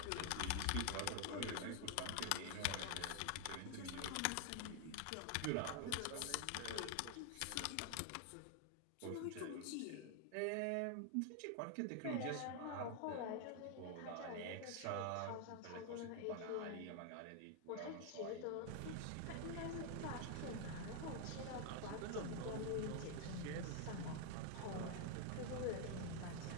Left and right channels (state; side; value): different; both; correlation 0.00